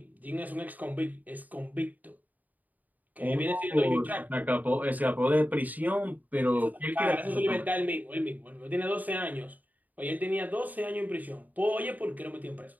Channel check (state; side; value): late; left; 0.080 ms